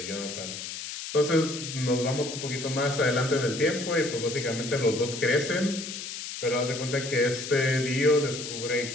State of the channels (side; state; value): left; noise; hiss, 8 dB below the sound